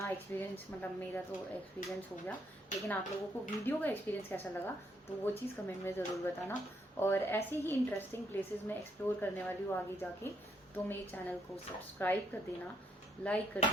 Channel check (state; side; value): normal; both; correlation 0.73